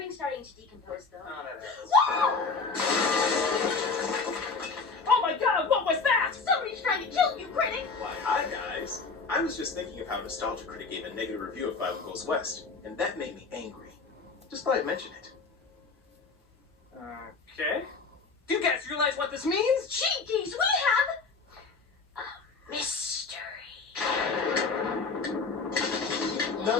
starting to decompose, though. Oh, that happens. Oh my god, what was that? Somebody's trying to kill you, critic! Why, hi guys. I was just thinking of how Nostalgia Critic gave a negative review of Five Goes West, and that made me angry. Just thought I'd mention it. Okay. Do you guys realize what this means? Cheekies, we have a mystery.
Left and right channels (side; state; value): right; quieter; 4.5 dB